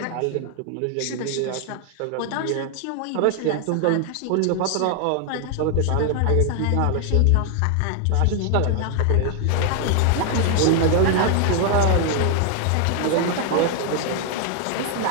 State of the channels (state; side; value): different; both; correlation 0.00